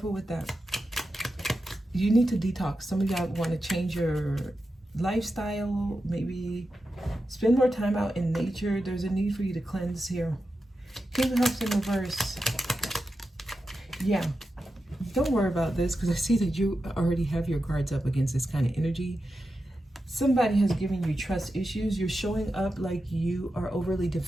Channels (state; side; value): normal; both; correlation 0.90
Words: with that. You need to detox. Some of y'all want to change your lifestyle, maybe spend more time out in nature. There's a need for you to cleanse here. King of Cups in reverse. Yeah, don't worry about this because I see that you already have your guards up against this kind of energy. Somebody has given you trust issues. You're showing up like you are overly